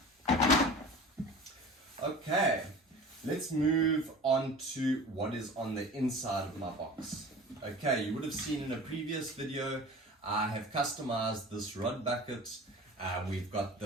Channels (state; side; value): normal; both; correlation 0.39